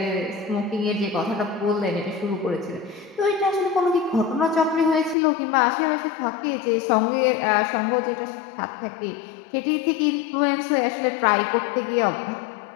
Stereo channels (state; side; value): drops out; right; at 5.2 s